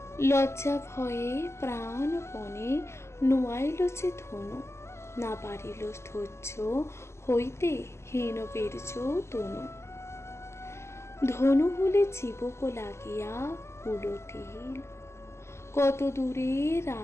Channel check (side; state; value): right; late; 0.13 ms